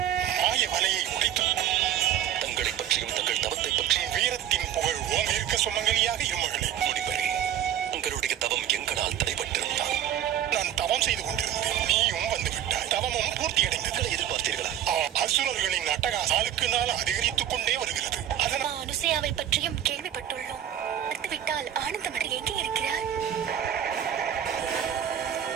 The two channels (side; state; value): left; quieter; 10.4 dB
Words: மாய வலையை உடைத்து தங்களை பற்றியும் தங்கள் தவத்தை பற்றியும் வீரத்தின் புகழ் ஓங்க இருக்க சுமங்கலியாக இருமகளே. முனிவரே, உங்களுடைய தவம் எங்களால் தடைபட்டிருந்தால் நான் தவம் செய்து கொண்டிருந்தேன். நீயும் வந்து விட்டாய். தவமும் பூர்த்தி அடைந்தது. எதிர்பார்த்தீர்களா? அசுரர்களின் அட்டகாசம் நாளுக்கு நாள் அதிகரித்துக் கொண்டே வருகிறது. அதனால் அனுசையாவை பற்றியும் கேள்விப்பட்டுள்ளோம். விட்டால் ஆனந்தமடை எங்கே இருக்கிறார்?